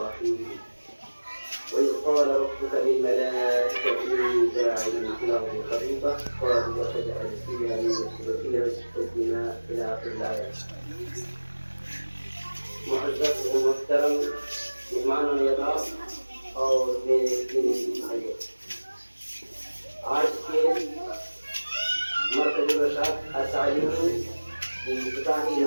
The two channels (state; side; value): inverted; both; correlation -1.00